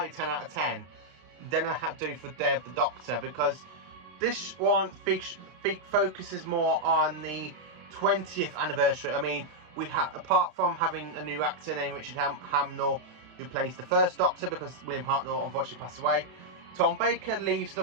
10 out of 10 than I have to do for Day of the Doctor, because this one focuses more on the 20th anniversary. I mean, we have, apart from having a new actor named Richard Hamnell who plays the first Doctor, because William Hartnell unfortunately passed away, Tom Baker leaves the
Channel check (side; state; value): left; late; 32 ms